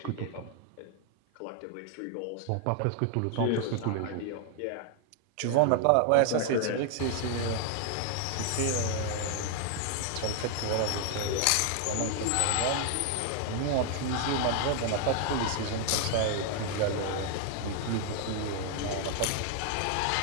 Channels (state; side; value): different; both; correlation 0.00